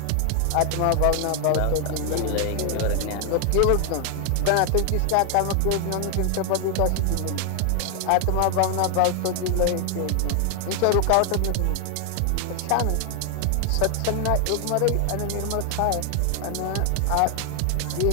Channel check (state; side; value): different; both; correlation 0.00